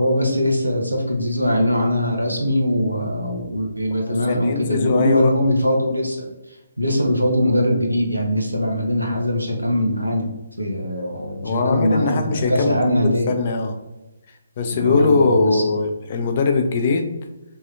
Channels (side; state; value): both; inverted; correlation -0.79